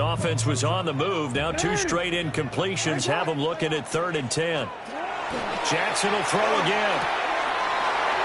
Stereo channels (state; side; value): identical; both; correlation 1.00